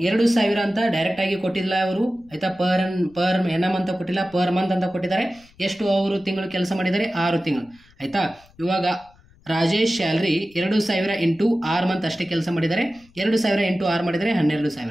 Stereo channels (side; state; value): left; noise; rumble, 29 dB below the sound